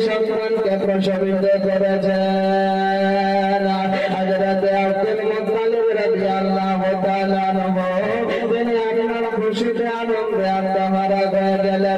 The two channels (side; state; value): both; identical; correlation 1.00